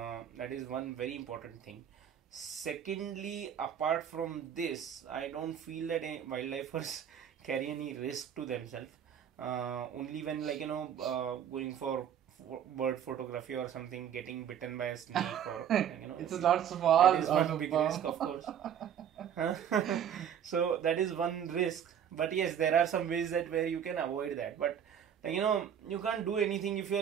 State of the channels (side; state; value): left; quieter; 8.9 dB